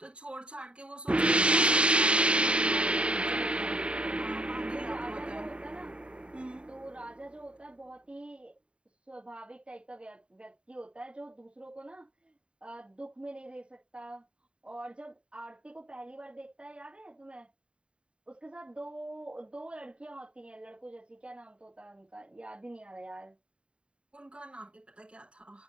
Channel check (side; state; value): left; late; 0.056 ms